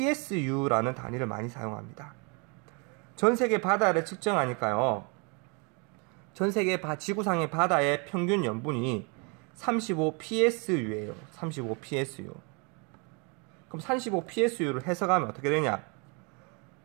단위를 많이 사용합니다. 전 세계 바다를 측정하니까요. 전 세계 지구상의 바다의 평균 염분이 35 PSU예요. 35 PSU. 그럼 35 PSU를 해석하면 어떻게 되냐?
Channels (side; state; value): left; quieter; 33.3 dB